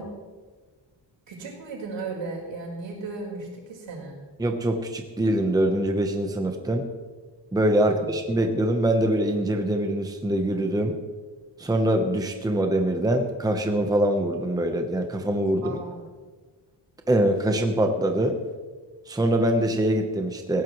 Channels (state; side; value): normal; both; correlation 0.63